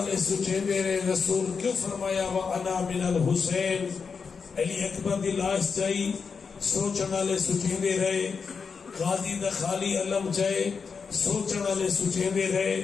سوچیں دے رہے رسول کیوں فرمایا وَأَنَا مِنَ الْحُسَيْن؟ علی اکبر دی لاش چاہی، سوچن والے سوچیں دے رہے غازی دا خالی علم چاہے، سوچن والے سوچیں دے رہے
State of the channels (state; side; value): quieter; right; 5.5 dB